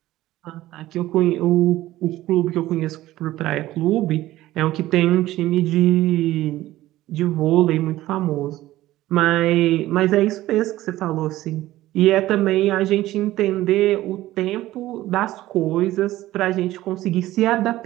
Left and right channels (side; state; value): left; quieter; 15.7 dB